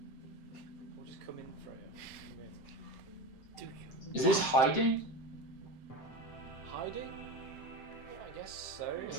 Or just come in, Freya. Come in. Do you? Is this hiding? Hiding? Yeah, I guess so. If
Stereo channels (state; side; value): late; right; 7.7 ms